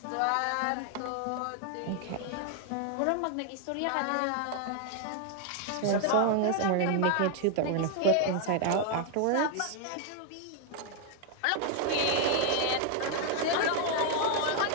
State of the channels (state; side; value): different; both; correlation 0.00